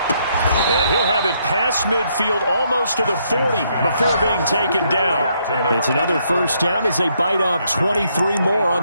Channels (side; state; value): both; inverted; correlation -0.73